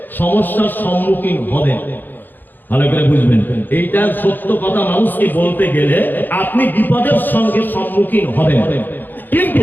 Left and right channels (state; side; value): late; right; 0.087 ms